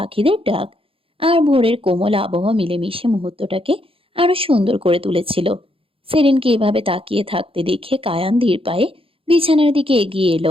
ডাক আর ভোরের কোমল আবহাওয়া মিলেমিশে মুহূর্তটাকে আরো সুন্দর করে তুলেছিল। সেরিনকে এভাবে তাকিয়ে থাকতে দেখে কায়ান ধীর পায়ে বিছানার দিকে এগিয়ে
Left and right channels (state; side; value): late; left; 0.27 ms